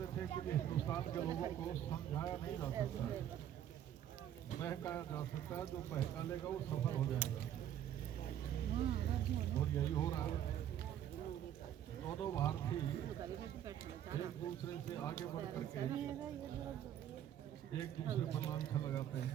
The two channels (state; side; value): quieter; left; 10.6 dB